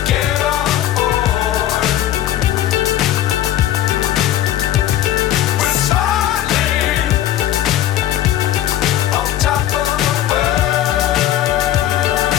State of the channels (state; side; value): quieter; right; 12.4 dB